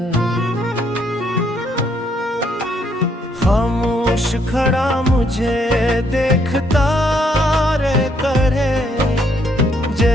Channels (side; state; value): both; normal; correlation 0.71